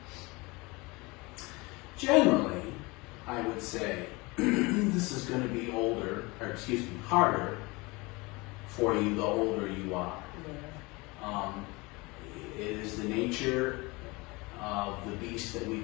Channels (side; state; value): right; quieter; 24.7 dB